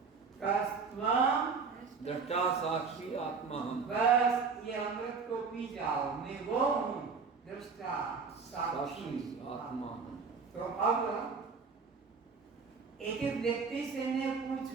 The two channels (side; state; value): left; quieter; 5.2 dB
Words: कस्त्वं दृष्टा साक्षी आत्मा हम। बस ये अमृत को पी जाओ, मैं वो हूँ, दृष्टा साक्षी आत्मा। तो अब एक एक व्यक्ति से मैं